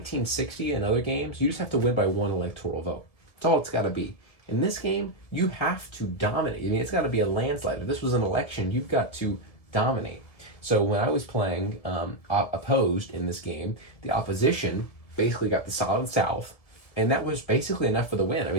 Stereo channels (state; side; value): late; right; 2.0 ms